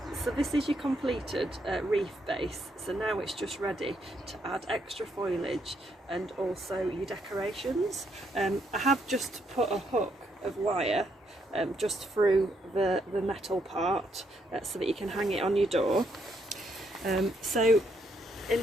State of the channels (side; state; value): both; normal; correlation 0.74